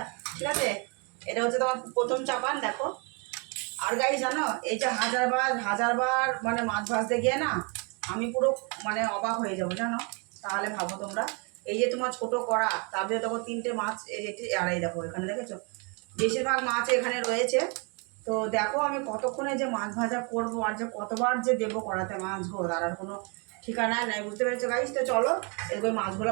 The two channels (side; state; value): left; quieter; 33.8 dB